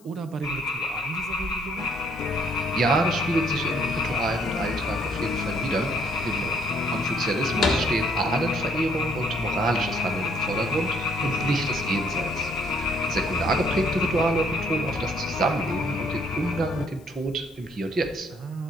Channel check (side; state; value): left; noise; hiss, 29 dB below the sound